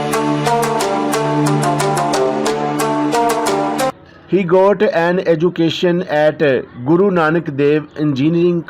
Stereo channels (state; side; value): identical; both; correlation 1.00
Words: He got an education at Guru Nanak Dev Engineering